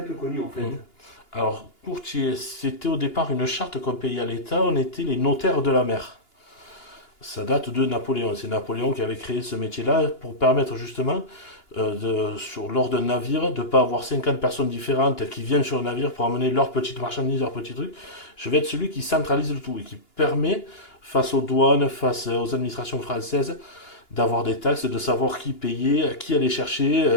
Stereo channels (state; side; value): late; right; 2.9 ms